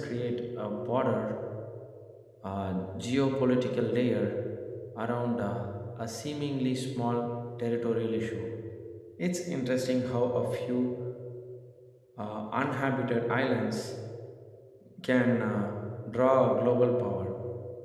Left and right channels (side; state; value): both; identical; correlation 1.00